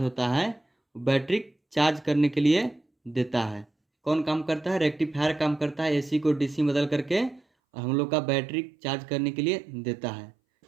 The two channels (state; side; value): drops out; left; at 7.4 s